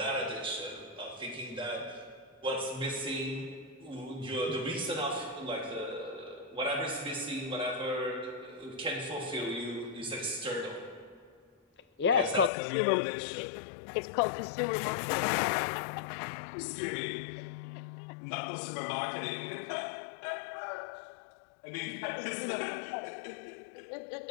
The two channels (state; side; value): drops out; right; at 12.5 s